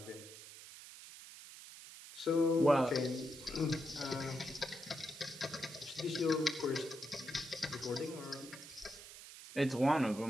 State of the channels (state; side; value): noise; right; hiss, 15 dB below the sound